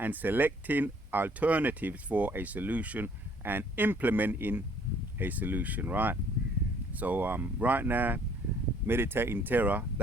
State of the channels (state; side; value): normal; both; correlation 0.61